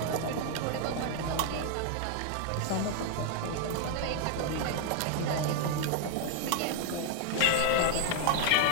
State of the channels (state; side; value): different; both; correlation 0.00